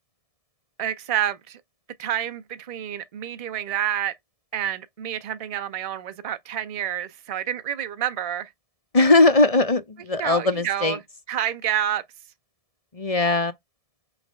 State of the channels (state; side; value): late; right; 1.7 ms